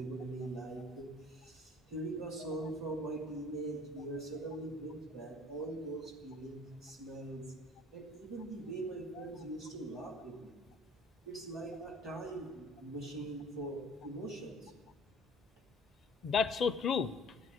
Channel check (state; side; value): normal; both; correlation 0.49